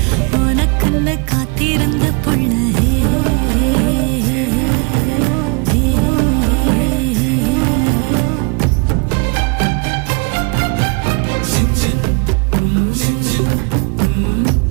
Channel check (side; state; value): left; quieter; 32.8 dB